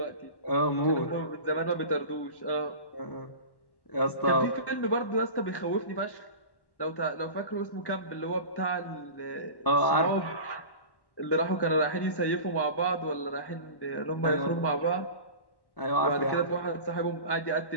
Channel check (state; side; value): late; right; 1.1 ms